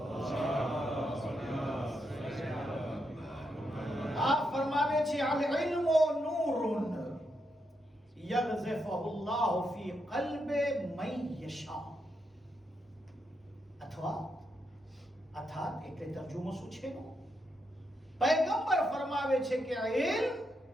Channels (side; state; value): both; normal; correlation 0.82